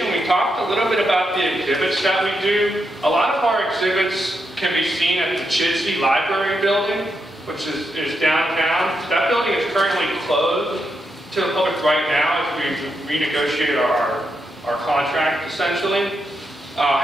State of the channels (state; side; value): normal; both; correlation 0.83